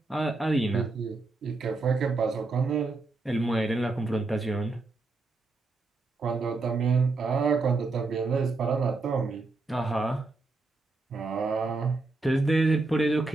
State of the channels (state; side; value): quieter; left; 3.6 dB